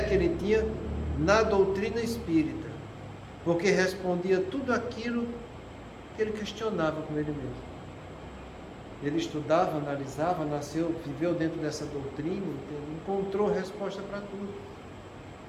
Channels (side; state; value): both; identical; correlation 1.00